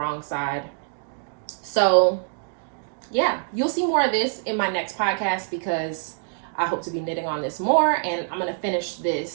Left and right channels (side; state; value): left; silent; digital silence